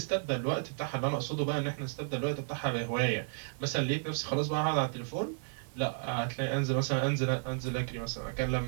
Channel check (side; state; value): left; silent; digital silence